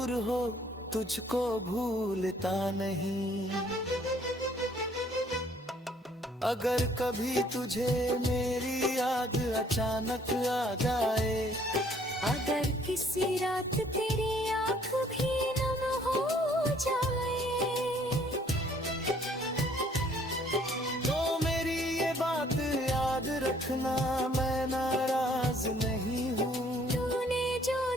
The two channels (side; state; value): both; normal; correlation 0.61